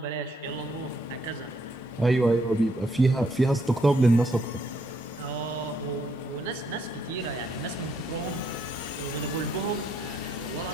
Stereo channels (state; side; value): normal; both; correlation 0.72